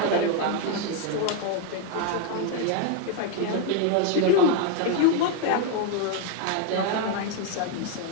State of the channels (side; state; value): both; different; correlation 0.01